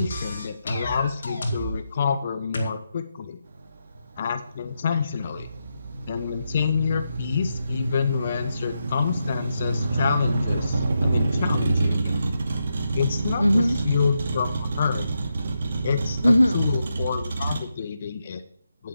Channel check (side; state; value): both; inverted; correlation -0.84